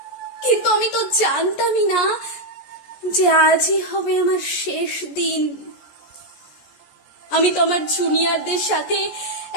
কিন্তু আমি তো জানতামই না যে আজই হবে আমার শেষ দিন। আমি তো আমার জুনিয়রদের সাথে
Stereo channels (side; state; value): right; late; 14 ms